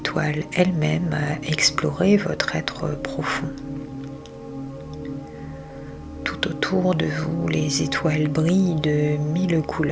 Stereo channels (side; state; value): both; identical; correlation 1.00